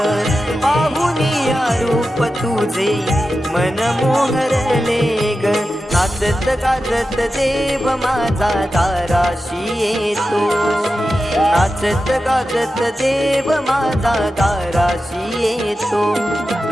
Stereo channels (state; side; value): normal; both; correlation 0.92